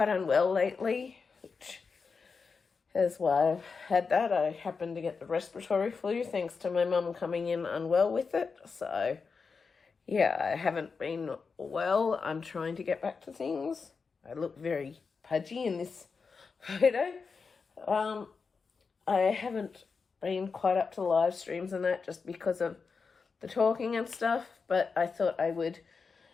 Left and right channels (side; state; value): right; quieter; 5.0 dB